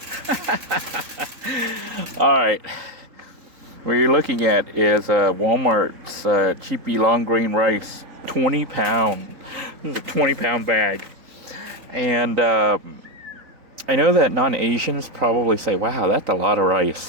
All right. What you're looking at is Walmart's cheapy long grain rice, 20 pound. This is a 20-pound bag. And I know that non-Asians probably say, wow, that's a lot of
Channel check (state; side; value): late; left; 3.9 ms